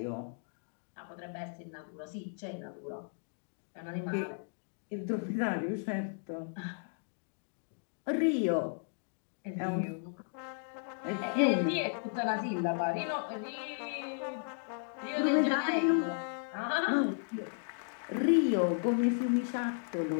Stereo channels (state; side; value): silent; right; digital silence